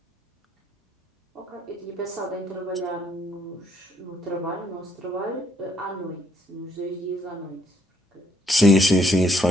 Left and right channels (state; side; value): normal; both; correlation 0.69